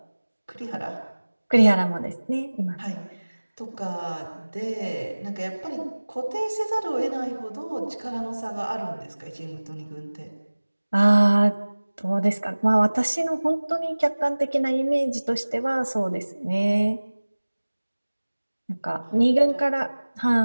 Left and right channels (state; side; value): inverted; both; correlation -1.00